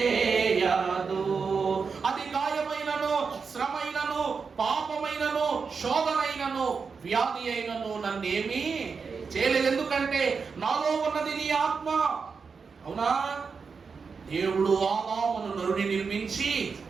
అది గాయమైనను, శ్రమైనను, పాపమైనను, శోధనైనను, వ్యాధి అయినను నన్నేమి చేయలేదు. ఎందుకంటే నాలో ఉన్నది నీ ఆత్మ. అవునా? దేవుడు ఆదామును నరుని నిర్మించి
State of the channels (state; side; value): quieter; left; 5.3 dB